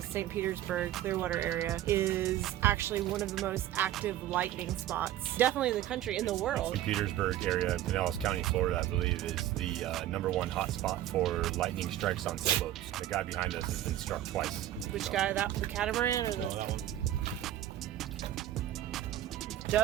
St. Petersburg, Clearwater area, is actually one of the most active lightning spots, definitely in the country, in the world. St. Petersburg area, Pinellas County, Florida, I believe, is the #1 hotspot for lightning strikes on sailboats. The guy behind us has been struck twice. Which guy? The catamaran or the? No, that one.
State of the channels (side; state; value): left; quieter; 13.0 dB